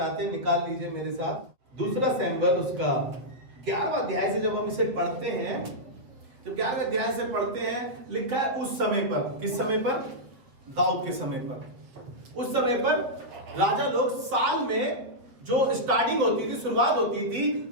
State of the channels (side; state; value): left; late; 7.7 ms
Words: हैं निकाल लीजिए मेरे साथ। दूसरा सैमुएल उसका 11वां अध्याय से जब हम इसे पढ़ते हैं, जब 11वें अध्याय से पढ़ते हैं, लिखा है उस समय पर। किस समय पर? दाऊद के समय पर। उस समय पर राजा लोग साल में जो स्टार्टिंग होती थी, शुरुआत होती थी,